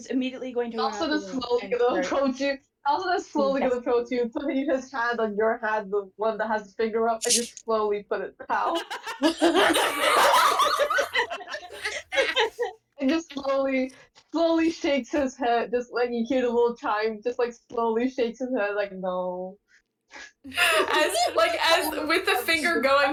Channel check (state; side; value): identical; both; correlation 1.00